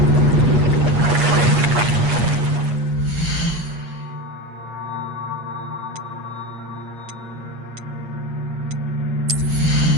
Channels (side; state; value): left; late; 8.4 ms